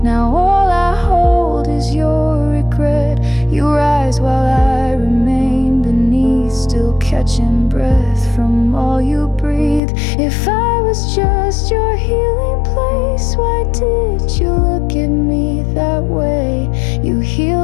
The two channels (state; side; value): drops out; right; at 9.8 s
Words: Now all I hold is your regret. You rise while I remain beneath, still catching breath from all you breathe. If I was just your healing place, why did you look at me that way? You